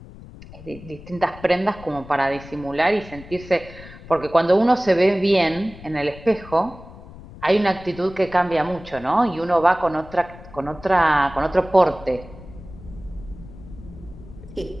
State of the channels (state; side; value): noise; left; rumble, 17 dB below the sound